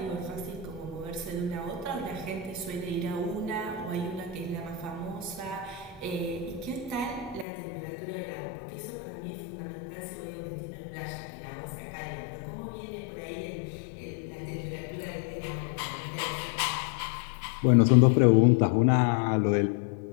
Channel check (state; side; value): drops out; right; at 7.5 s